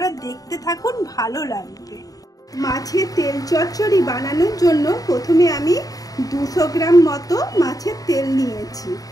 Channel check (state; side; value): late; right; 0.18 ms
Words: দেখতে থাকুন, ভালো লাগবে। মাছের তেল চচ্চড়ি বানানোর জন্য প্রথমে আমি 200 গ্রাম মতো মাছের তেল নিয়েছি।